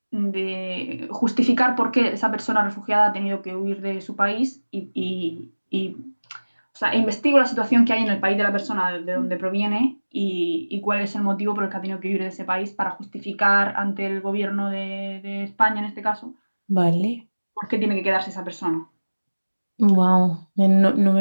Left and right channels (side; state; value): both; inverted; correlation -1.00